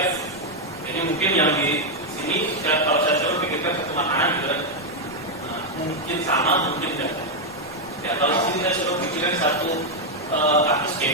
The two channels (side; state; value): left; noise; rumble, 26 dB below the sound